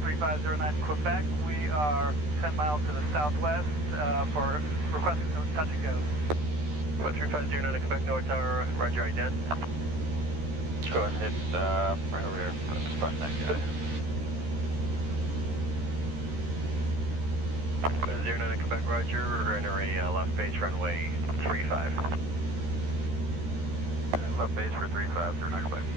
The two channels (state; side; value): late; left; 13 ms